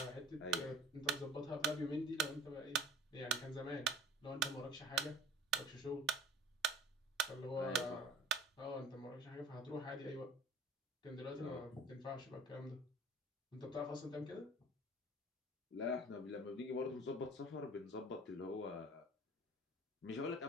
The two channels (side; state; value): both; normal; correlation 0.46